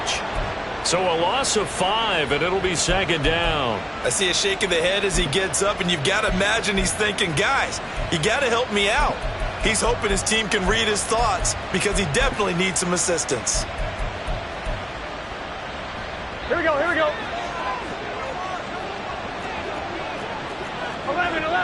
So a loss of 5, and it'll be second down. I see a shake of the head as he gets up, and you've got to imagine he's thinking, guys, you got to help me out. He's hoping his team can read his thoughts because he definitely needs some assistance. Here we go, here we go. 11.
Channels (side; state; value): both; identical; correlation 1.00